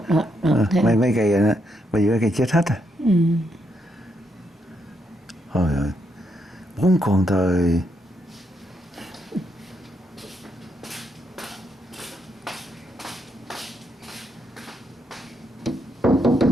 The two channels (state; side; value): normal; both; correlation 0.78